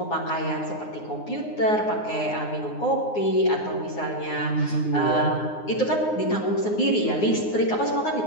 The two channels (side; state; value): right; late; 9.6 ms